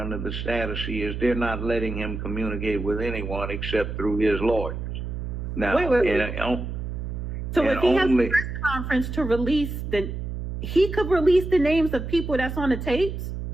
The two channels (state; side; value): noise; right; hum, 5 dB below the sound